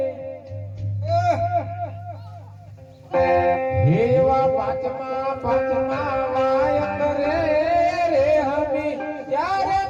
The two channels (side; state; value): both; identical; correlation 1.00